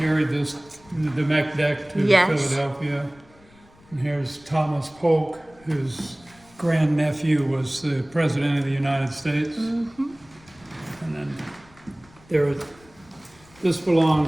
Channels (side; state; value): left; noise; rumble, 27 dB below the sound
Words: the mech deck to Yes. Philadelphia. And here's Thomas Polk, whose grandnephew was the President of the United States. And then this